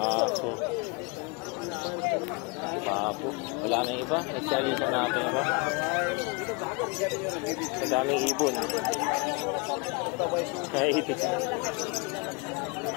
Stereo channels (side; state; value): right; quieter; 30.1 dB